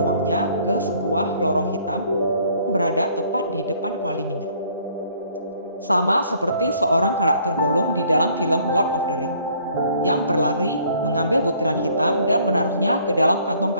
ke sebuah lorong hitam yang berada tepat di depan kuali minyak. Sama seperti seorang karakter Gollum di dalam film Lord of the Ring, yang berlari mengambil butiran hitam dan menaruhnya ke dalam kantong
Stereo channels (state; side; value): inverted; both; correlation -0.60